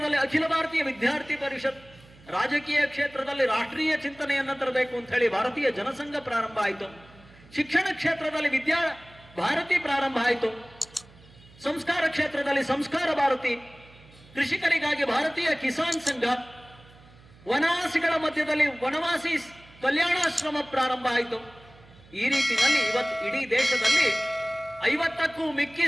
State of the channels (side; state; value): right; noise; hum, 25 dB below the sound